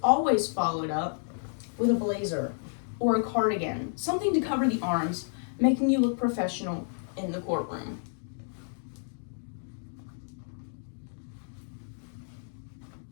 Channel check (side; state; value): right; silent; digital silence